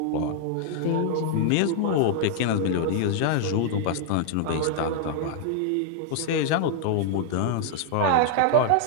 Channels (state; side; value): different; both; correlation -0.01